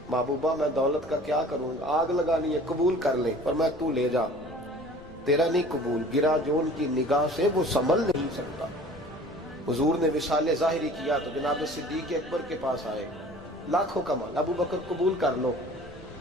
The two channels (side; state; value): left; noise; rumble, 20 dB below the sound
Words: محبوبہ میں دولت کا کیا کروں، آگ لگانی ہے، قبول کر لیں۔ فرمایا تو لے جا، تیرا نہیں قبول، گرا جو ان کی نگاہ سے وہ سنبھل نہیں سکتا۔ حضور نے وصال ظاہری کیا تو جناب صدیق اکبر کے پاس آئے، لاکھوں کا مال، ابو بکر قبول کر لو،